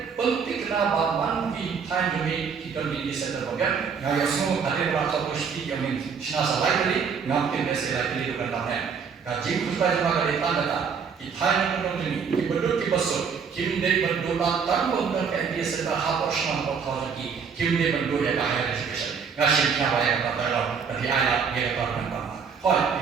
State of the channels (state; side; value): quieter; left; 6.2 dB